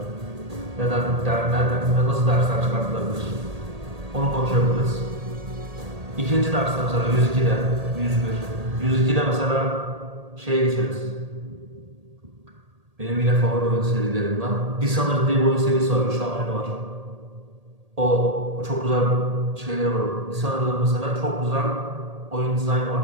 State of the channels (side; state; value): left; late; 1.8 ms